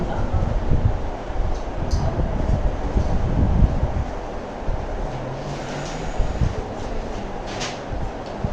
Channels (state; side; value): identical; both; correlation 1.00